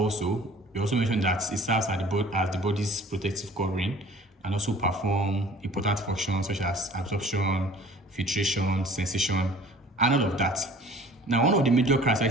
we also mentioned that it serves as the body's protective covering and also perform important functions such as absorption, filtration, sensation, and all of that. Now, one of the major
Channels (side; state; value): both; normal; correlation 0.48